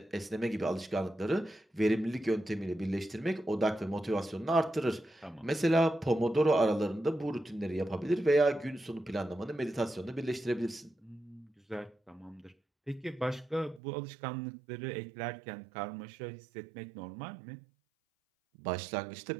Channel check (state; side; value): drops out; left; at 13.8 s